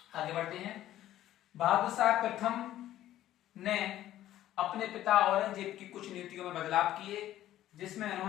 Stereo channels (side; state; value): right; quieter; 13.3 dB